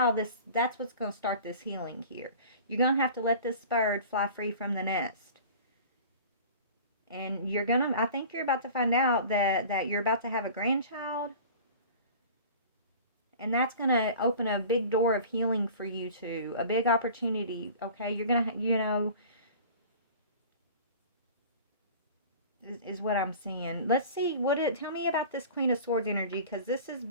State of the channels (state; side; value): inverted; both; correlation -0.41